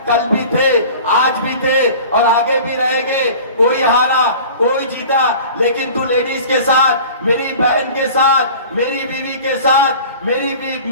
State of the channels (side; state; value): both; inverted; correlation -0.42